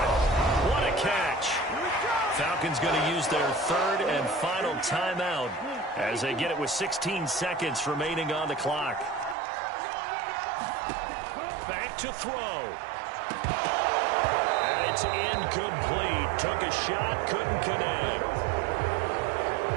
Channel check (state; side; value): drops out; left; at 9.3 s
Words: What a catch. Falcons going to use their 3rd and final timeout as they get it with 16 seconds remaining on the clock. Back to throw. And it's incomplete. Took a shot, couldn't connect.